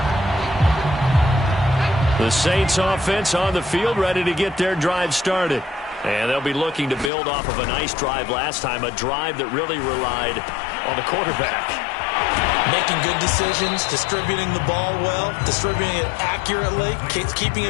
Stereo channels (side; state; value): right; drops out; at 7.1 s